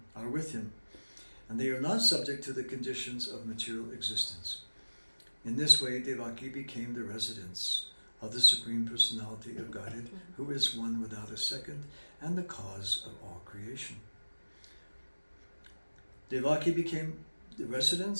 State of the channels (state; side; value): inverted; both; correlation -1.00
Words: and they are not subject to the conditions of material existence. In this way, Devaki became the residence of the Supreme Personality of Godhead, who is one without a second and the cause of all creation. Devaki became the